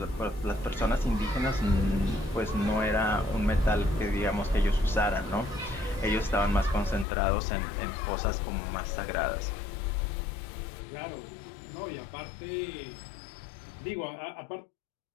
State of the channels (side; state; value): right; drops out; at 7.1 s